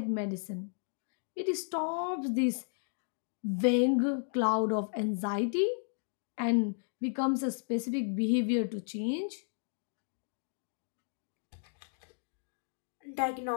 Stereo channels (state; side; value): silent; right; digital silence